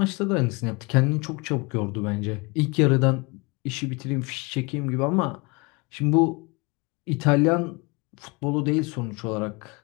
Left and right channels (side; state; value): right; quieter; 28.1 dB